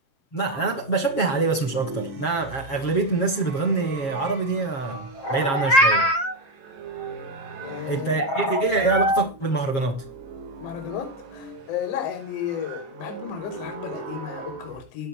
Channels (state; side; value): late; right; 7.3 ms